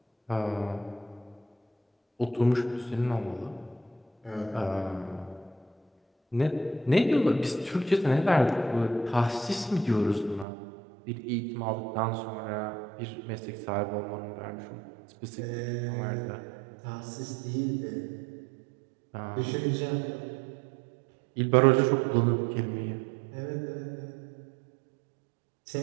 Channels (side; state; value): left; drops out; at 10.5 s